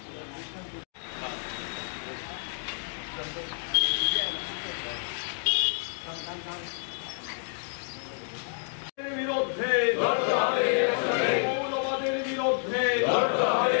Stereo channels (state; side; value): silent; right; digital silence